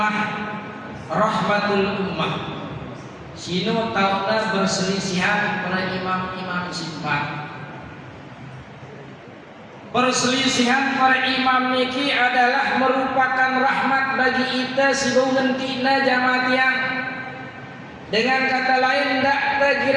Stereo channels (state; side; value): identical; both; correlation 1.00